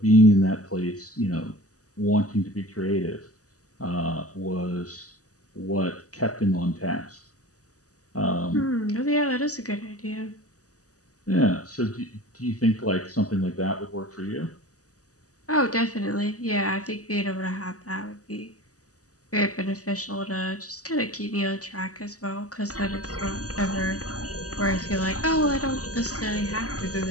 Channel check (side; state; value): right; late; 0.66 ms